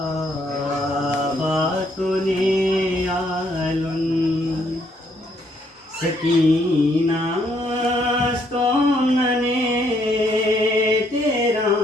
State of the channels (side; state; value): both; normal; correlation 0.70